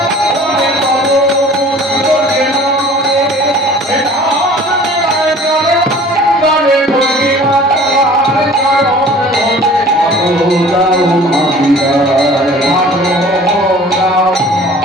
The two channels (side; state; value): both; normal; correlation 0.47